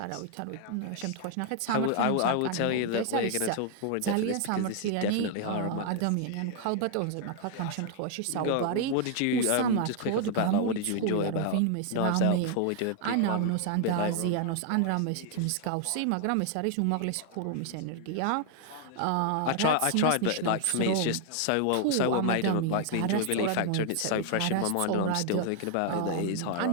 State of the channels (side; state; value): both; different; correlation 0.00